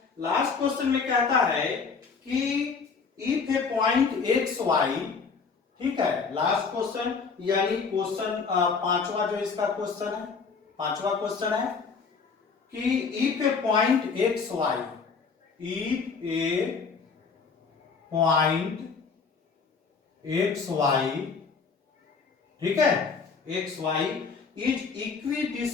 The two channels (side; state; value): right; quieter; 5.2 dB